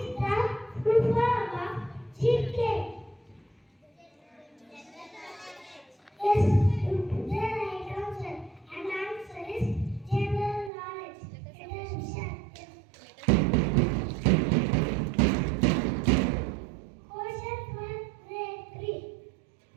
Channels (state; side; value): drops out; left; at 10.7 s